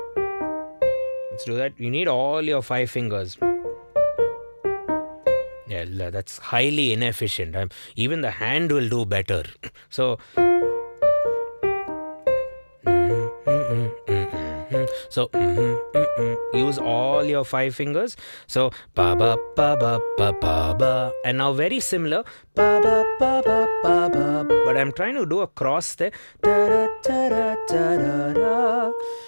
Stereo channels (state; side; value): inverted; both; correlation -1.00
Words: Let's do that. You need all your 5 fingers. Yeah, that's highly inefficient. Even the hand will do better. So use all your 5 fingers. So ba ba ba ba ba ba ba, and now very similar, ba ba ba ba ba ba. But I'm trying to do a cross there. Da da da da da da